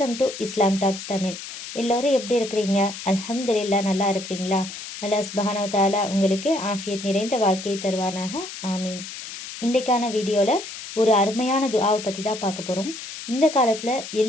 to Islam talks Tamil. எல்லோரும் எப்படி இருக்கிறீங்க? அல்ஹம்துலில்லாஹ், நல்லா இருக்கிறீங்களா? அல்லாஹ் சுப்ஹானஹு வ தஆலா உங்களுக்கு ஆஃபியத் நிறைந்த வாழ்க்கையை தருவானாக, ஆமீன். இன்றைக்கான வீடியோவில் ஒரு அருமையான துஆவை பற்றி தான் பார்க்க போகிறோம். இந்த காலத்தில்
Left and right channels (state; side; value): noise; left; hiss, 10 dB below the sound